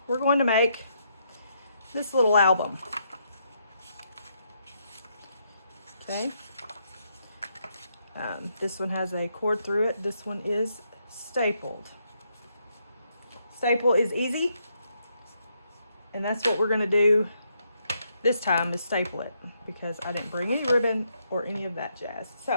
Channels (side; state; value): both; inverted; correlation -0.76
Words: we're going to make this little album. Okay. This one has a cord through it. This one is stapled. Staple is easy, and that's what we're going to do this time, is staple it, because I didn't bring any ribbon or any of that jazz.